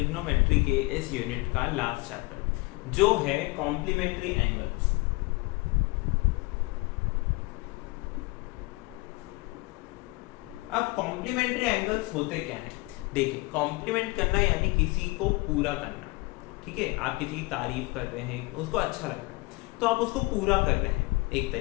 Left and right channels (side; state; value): right; quieter; 23.9 dB